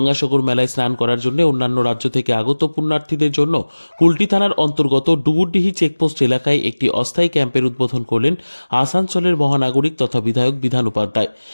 মেলায় স্নান করার জন্য অন্যান্য রাজ্য থেকে আগত পুণ্যার্থীদের জন্য কুলটি থানার অন্তর্গত ডুবুরডিহি চেকপোস্ট এলাকায় একটি অস্থায়ী ক্যাম্পের উদ্বোধন করলেন আসানসোলের মহানাগরিক তথা বিধায়ক বিধান উপাধ্যায়।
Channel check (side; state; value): both; inverted; correlation -1.00